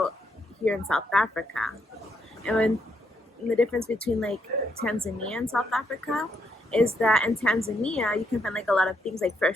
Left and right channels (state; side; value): normal; both; correlation 0.77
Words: here in South Africa. And the difference between Tanzania and South Africa is that in Tanzania you can find a lot of things like